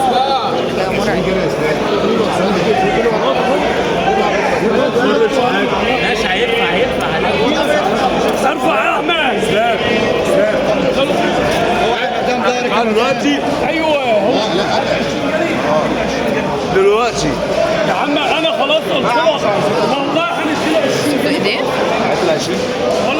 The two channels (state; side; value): identical; both; correlation 1.00